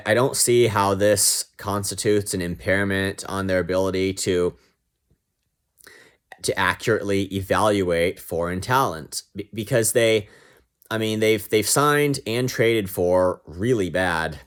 see how this constitutes an impairment on their ability to accurately evaluate foreign talent, because they've signed and traded for really bad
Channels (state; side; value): identical; both; correlation 1.00